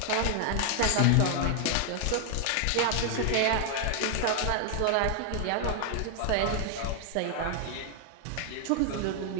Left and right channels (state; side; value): different; both; correlation 0.00